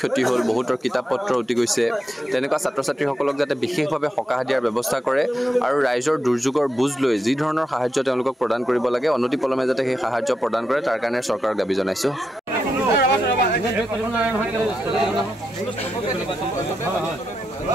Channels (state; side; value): normal; both; correlation 0.86